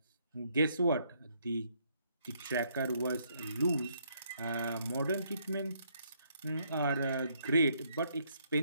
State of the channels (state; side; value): inverted; both; correlation -0.71